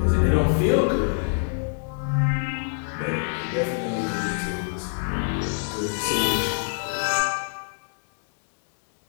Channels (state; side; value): silent; right; 62 dB below the other